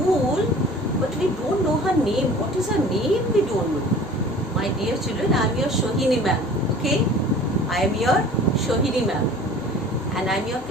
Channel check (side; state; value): left; noise; hum, 20 dB below the sound